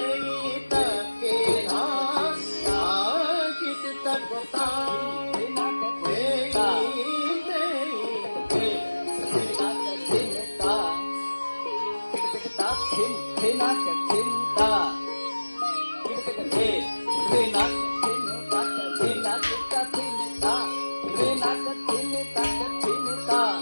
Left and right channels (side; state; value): both; inverted; correlation -1.00